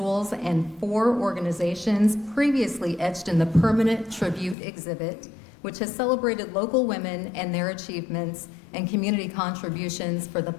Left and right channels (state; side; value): drops out; right; at 4.5 s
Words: and 4 organizations previously etched in the permanent tribute exhibit, which has celebrated local women and their achievements and community contributions for the